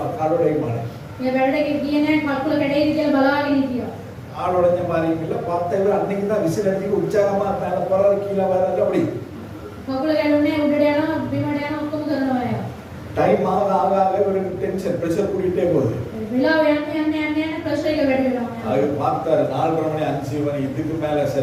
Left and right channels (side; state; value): both; identical; correlation 1.00